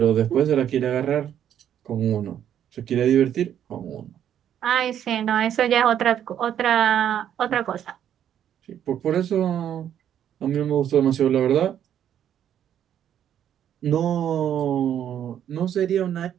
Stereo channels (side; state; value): left; quieter; 10.0 dB